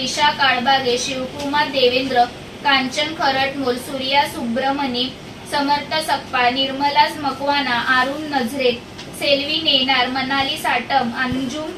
काळबागे, शिवकुमार देवेंद्र, कांचन खरटमोल, सूर्या सुब्रमणी, समर्थ सकपाळ, निर्मला मकवाना, अरुण नजरे, सेल्वी नेनार, मनाली साटम, अंजुम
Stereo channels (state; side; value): identical; both; correlation 1.00